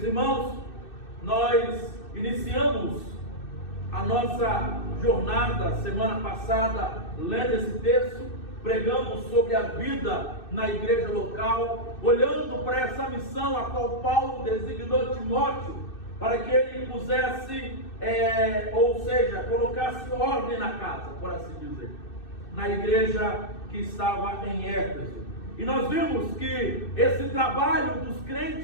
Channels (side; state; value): right; late; 2.6 ms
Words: irmãos, nós iniciamos a nossa jornada semana passada lendo esse texto, pregando sobre a vida na igreja local, olhando para essa missão a qual Paulo designou Timóteo para que ele pusesse, colocasse ordem na casa, por assim dizer, na igreja que estava em Éfeso. E nós vimos que esse trabalho dos